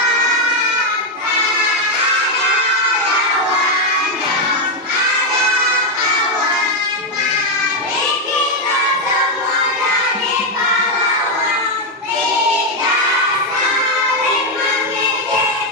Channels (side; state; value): both; normal; correlation 0.03